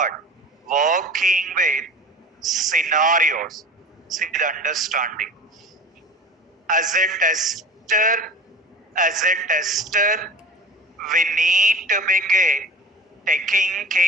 working with scenarios. See the understanding. As a tester, we need to begin taking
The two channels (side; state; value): both; normal; correlation 0.38